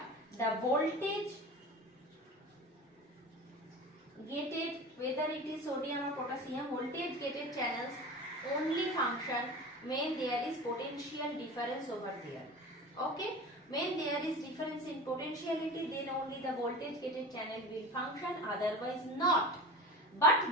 the voltage gated, whether it is sodium or potassium, voltage gated channels only function when there is potential difference over there. Okay. When there is difference in potentiality, then only the voltage gated channel will function, otherwise not. But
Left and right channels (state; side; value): normal; both; correlation 0.33